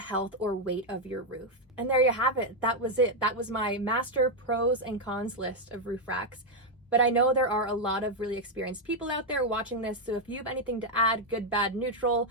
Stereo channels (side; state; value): both; normal; correlation 0.02